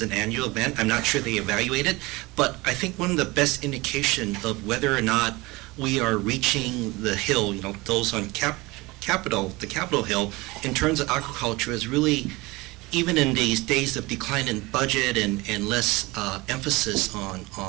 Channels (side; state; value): left; quieter; 22.6 dB